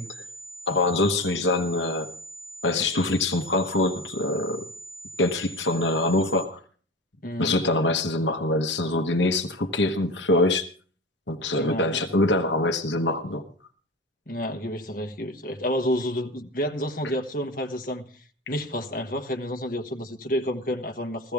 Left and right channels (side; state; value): both; normal; correlation 0.28